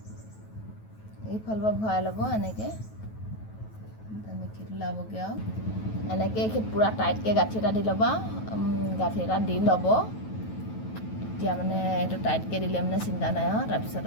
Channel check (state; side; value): late; right; 9.2 ms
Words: এইফালৰ পৰা ভৰাই ল'ব এনেকৈ মিঠিটো লাবগৈ আৰু এনেকৈ পূৰা টাইটকৈ গাঁঠি এটা দি ল'বা গাঁঠি এটা দি ল'ব তেতিয়া মানে এইটো টাইটকৈ দিলে মানে চিন্তা নাই আৰু তাৰপিছত